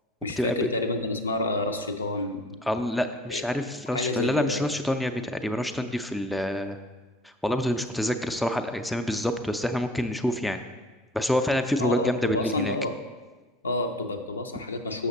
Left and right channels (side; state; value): both; normal; correlation 0.46